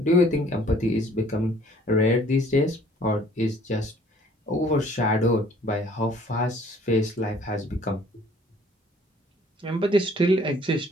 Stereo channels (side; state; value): both; normal; correlation 0.56